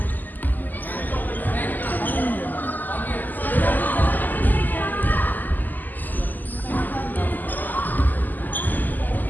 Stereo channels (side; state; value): right; late; 0.085 ms